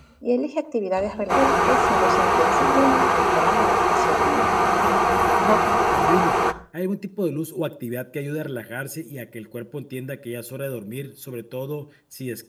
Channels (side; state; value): both; identical; correlation 1.00